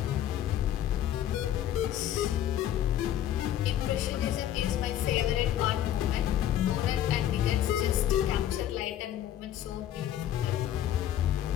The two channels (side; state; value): right; quieter; 11.4 dB